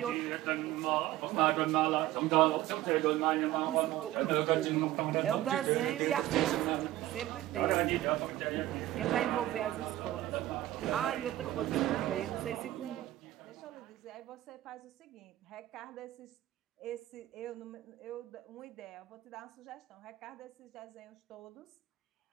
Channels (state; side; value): quieter; left; 15.1 dB